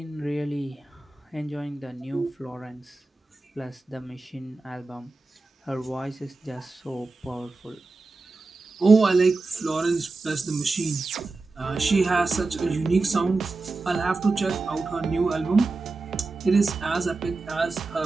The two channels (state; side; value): quieter; left; 3.6 dB